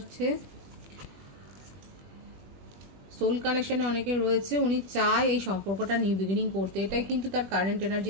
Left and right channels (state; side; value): late; left; 20 ms